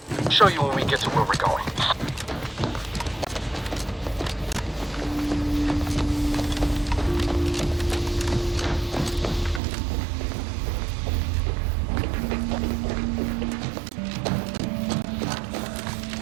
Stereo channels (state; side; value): drops out; left; at 9.6 s